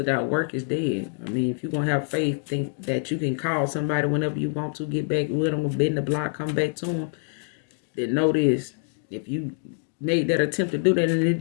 work is dead. I mean, if you're going to have faith, think that you can call somebody whenever you want to, get back with them, bend the block, come back to them, then know this. If you made that attempt to do that and it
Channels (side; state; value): right; silent; 61 dB below the other